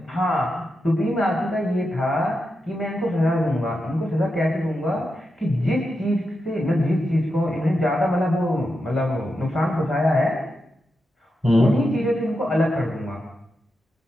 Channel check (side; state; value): both; normal; correlation 0.87